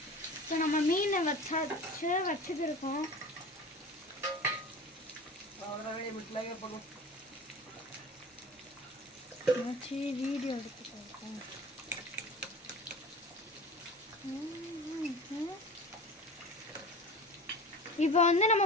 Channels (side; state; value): both; normal; correlation 0.36